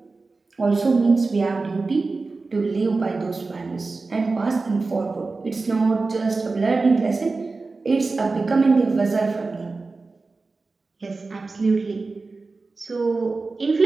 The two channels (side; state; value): left; quieter; 3.8 dB